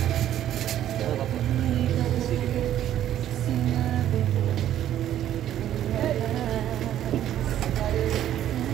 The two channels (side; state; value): left; quieter; 11.6 dB